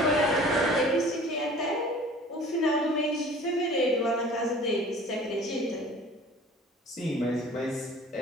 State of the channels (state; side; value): normal; both; correlation 0.46